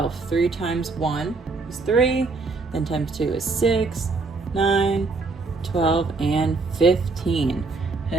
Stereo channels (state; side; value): quieter; left; 3.9 dB